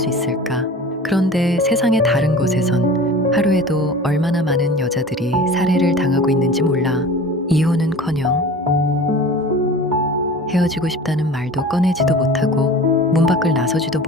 있을까? 그런데 세상의 다른 곳에선 하루에도 얼마나 많은 여자들이 살해를 당하고 있는지 몰라. 이혼은커녕 헤어지고 싶다는 말도 꺼내지도 못하고 문 밖을 나서지도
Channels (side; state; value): both; normal; correlation 0.39